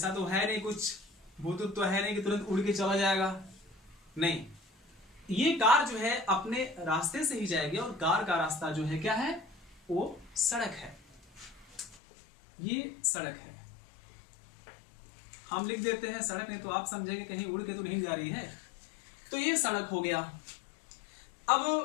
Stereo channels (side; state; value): right; drops out; at 12.0 s